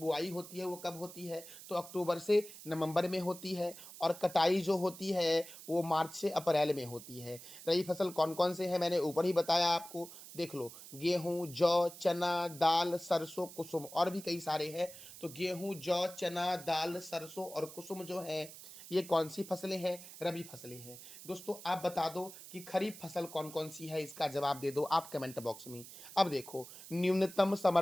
होती है वो कब होती है, तो अक्टूबर से नवंबर में होती है, और कटाई जो होती है वो मार्च से अप्रैल में होती है। रबी फसल कौन कौन से हैं मैंने ऊपर ही बताया आपको, देख लो, गेहूं, जौ, चना, दाल, सरसों, कुसुम, और भी कई सारे हैं। तो गेहूं, जौ, चना, दाल, सरसों और कुसुम जो है ये कौन सी फसलें हैं, रबी फसलें हैं दोस्तों। आप बता दो कि खरीफ फसल कौन कौन सी है, इसका जवाब दे दो आप कमेंट बॉक्स में। अब देखो, न्यूनतम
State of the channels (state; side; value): noise; right; hiss, 15 dB below the sound